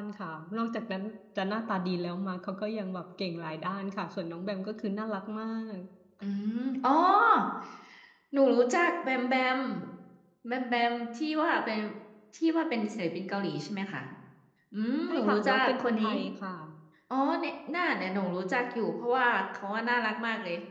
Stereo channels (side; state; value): both; identical; correlation 1.00